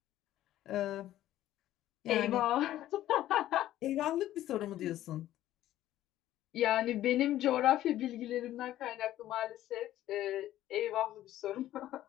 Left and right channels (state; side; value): quieter; right; 13.6 dB